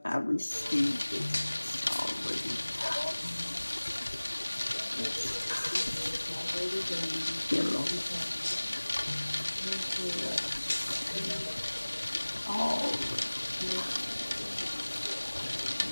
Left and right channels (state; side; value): inverted; both; correlation -1.00